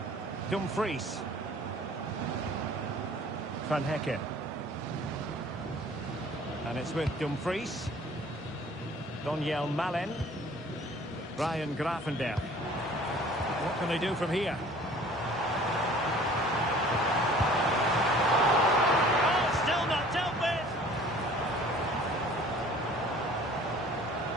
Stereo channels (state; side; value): normal; both; correlation 0.50